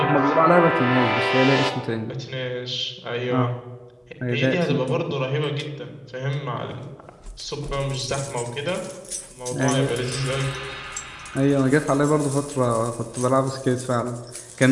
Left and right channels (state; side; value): identical; both; correlation 1.00